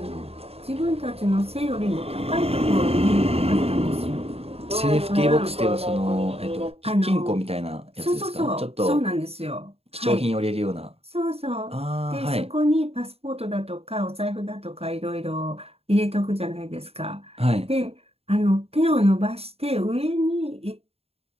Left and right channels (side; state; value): left; late; 0.29 ms